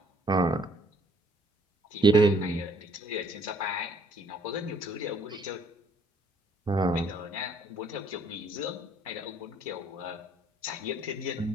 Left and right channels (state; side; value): normal; both; correlation 0.62